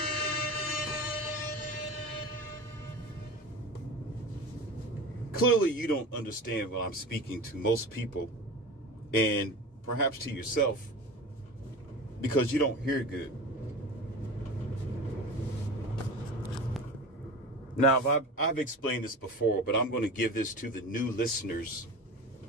Clearly, you don't understand what I'm speaking to most people, and perhaps to yourself, because you don't hear good. Now, I've explained this before, but I'm going to give this to the new listeners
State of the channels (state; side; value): normal; both; correlation 0.32